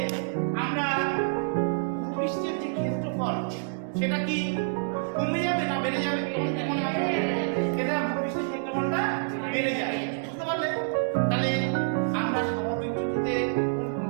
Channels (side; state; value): left; silent; digital silence